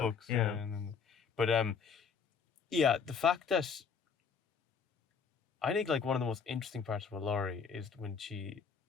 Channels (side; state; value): right; quieter; 6.0 dB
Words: Yeah, Yeah, but yeah, the fact that I think like one of the most interesting parts about Laurie is when she